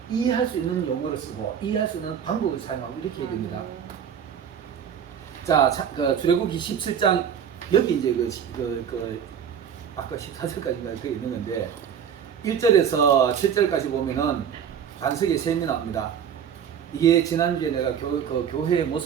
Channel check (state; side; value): quieter; left; 8.2 dB